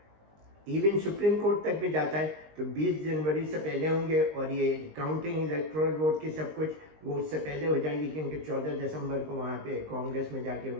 ایون سپریم کورٹ تک بھی جاتا ہے تو 20 جنوری سے پہلے ہوں گے, اور یہ کاؤنٹنگ الیکٹورل ووٹ کی سب کچھ وہ اس سے پہلے ہو جائے گی, کیونکہ 14 دسمبر کو وہاں پہ کانگریس میں جا کے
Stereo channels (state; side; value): late; left; 19 ms